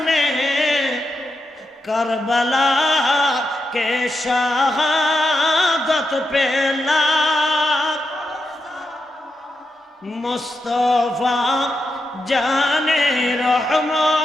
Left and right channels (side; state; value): both; normal; correlation 0.86